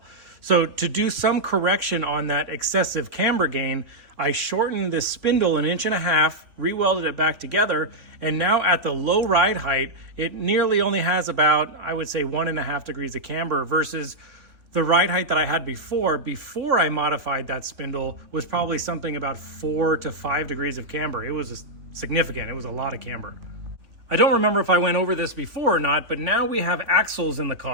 So to do some correction on that excessive camber gain, I shortened this spindle 1.5 inches, re-welded it back together, and now at the low ride height, it nearly only has about, I would say, 1.5 degrees of camber versus the ride height that I had before I modified that spindle was probably something about 4 to 5 degrees of camber. It was significant. It was a lot of camber. I don't remember if I went over this before or not, but now we have axles in the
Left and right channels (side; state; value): left; late; 3.4 ms